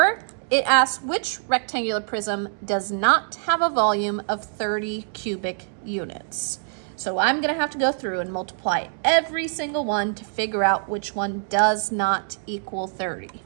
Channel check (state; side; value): silent; left; digital silence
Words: it asks which rectangular prism does not have a volume of 30 cubic units. So I'm gonna have to go through and multiply every single one to figure out which one does not equal 30.